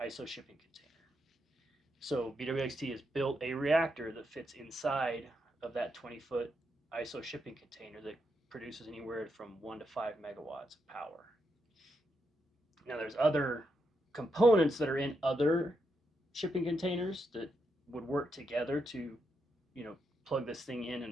ISO shipping container. So BWXT has built a reactor that fits inside of that 20-foot ISO shipping container that produces anywhere from 1 to 5 megawatts of power. Now there's other components that are in other shipping containers that would work together to, plug this thing in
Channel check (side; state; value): both; normal; correlation 0.82